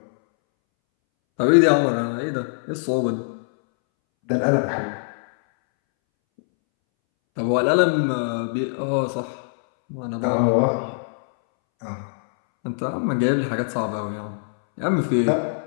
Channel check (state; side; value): silent; right; 63 dB below the other